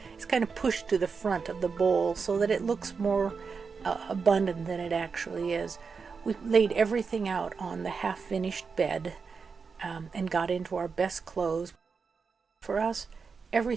is kind of pushed to the front of the bowl so that it looks more abundant than it actually is. We laid everything out on the half-finished bed and got into our best clothes. For us,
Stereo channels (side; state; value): left; quieter; 5.3 dB